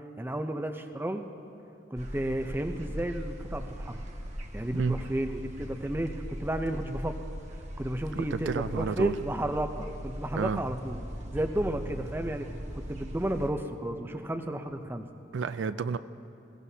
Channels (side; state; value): both; normal; correlation 0.79